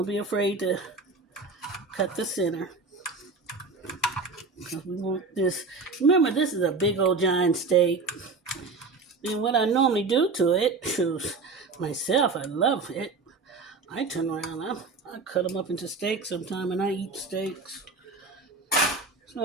be afraid to cut the center. Because we want this. Remember, this is a big old giant steak. And what I normally do to it, myself, I love it. I turn around, I cut them up into steaks sometime, and I eat steaks.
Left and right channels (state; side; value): quieter; left; 4.1 dB